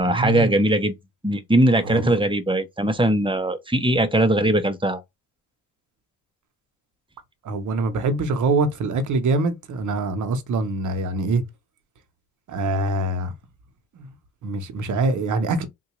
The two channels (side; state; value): both; normal; correlation 0.53